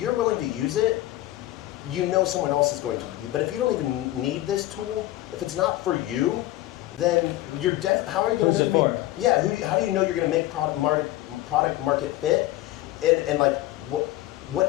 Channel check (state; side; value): quieter; right; 15.9 dB